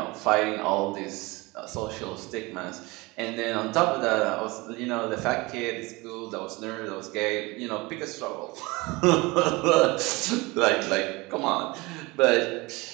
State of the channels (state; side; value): quieter; left; 23.6 dB